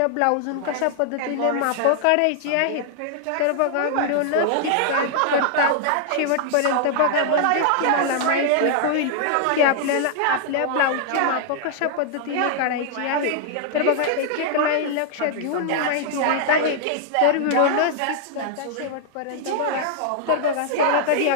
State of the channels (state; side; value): different; both; correlation -0.01